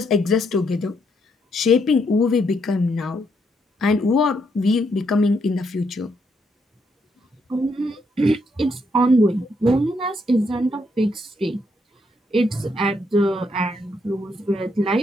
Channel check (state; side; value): normal; both; correlation 0.76